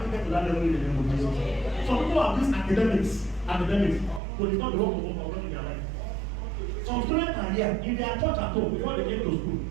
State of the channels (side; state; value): left; drops out; at 4.2 s